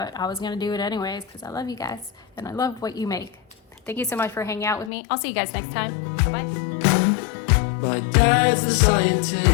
I was gonna do it anyways because I love you guys and I love what you make. Thank you so much for hanging out with me. I'll see you guys next time. Bye. My dad's the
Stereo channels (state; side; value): drops out; right; at 4.9 s